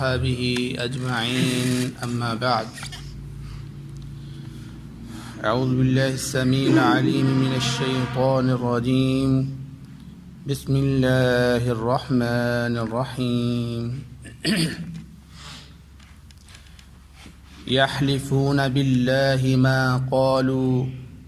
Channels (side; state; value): both; identical; correlation 1.00